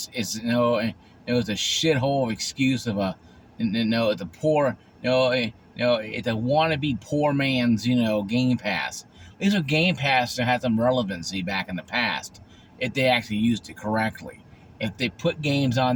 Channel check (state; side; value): identical; both; correlation 1.00